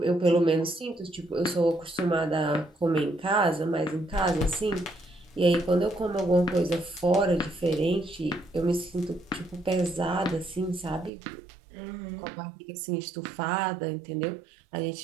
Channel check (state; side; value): drops out; left; at 11.1 s